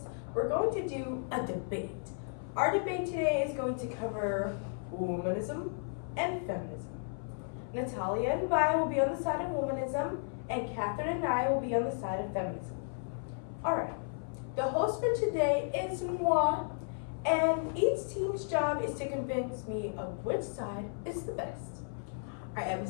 we're going to do a debate. Our debate today is going to cover womanism and feminism. Natalia and Vi will be on the side of womanism, and Catherine and I will be on the side of feminism. Alright, the host for today is moi, and each team's job is to convince me of which side is the best. Our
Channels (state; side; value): silent; right; 55 dB below the other